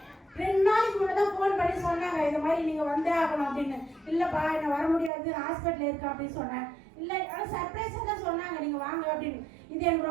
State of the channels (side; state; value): left; drops out; at 5.1 s